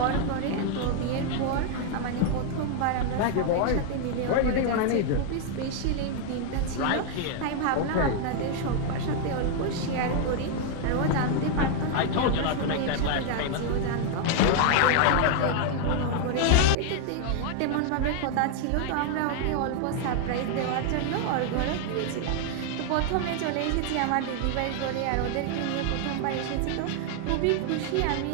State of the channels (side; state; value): both; different; correlation 0.00